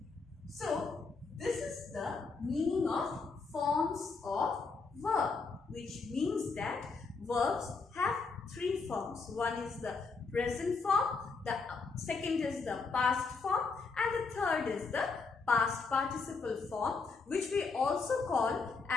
So, this is the meaning of forms of verb, which means that verbs have three forms. One is the present form, the second is the past form, and the third is the past participle form, which we also call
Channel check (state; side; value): quieter; right; 4.4 dB